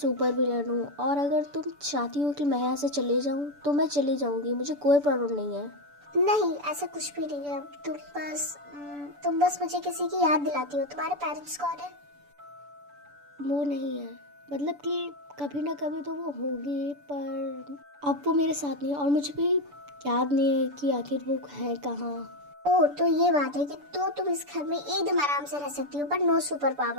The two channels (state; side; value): late; left; 6.9 ms